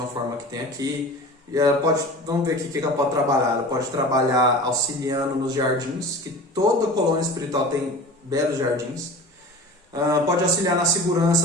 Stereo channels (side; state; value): both; normal; correlation 0.37